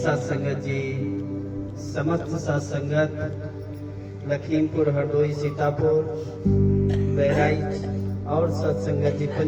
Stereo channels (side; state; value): both; identical; correlation 1.00